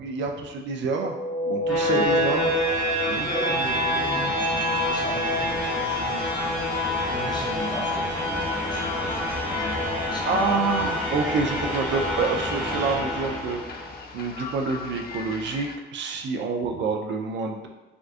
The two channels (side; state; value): both; normal; correlation 0.25